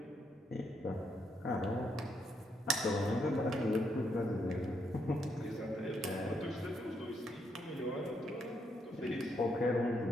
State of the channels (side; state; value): both; normal; correlation 0.77